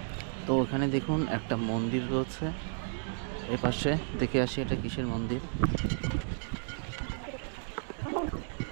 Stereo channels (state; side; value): silent; left; 56 dB below the other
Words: তো এখানে দেখুন একটা মন্দির রয়েছে, এপাশে দেখে আসি এটা কিসের মন্দির।